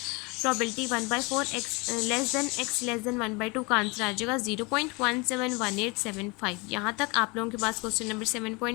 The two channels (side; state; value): right; quieter; 27.6 dB